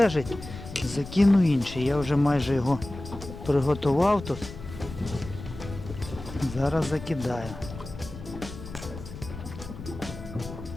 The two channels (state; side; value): noise; left; rumble, 12 dB below the sound